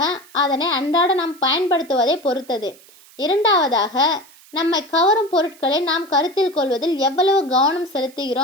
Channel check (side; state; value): right; noise; hiss, 25 dB below the sound